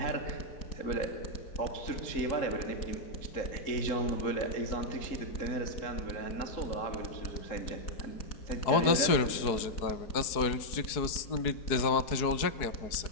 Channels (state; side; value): late; right; 4.7 ms